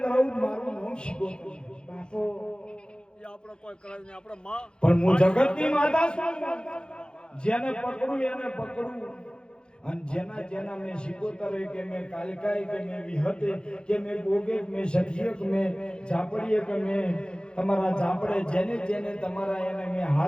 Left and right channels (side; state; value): right; late; 0.049 ms